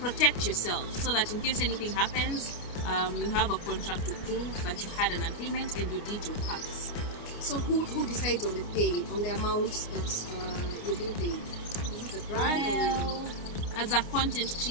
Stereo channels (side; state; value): right; late; 29 ms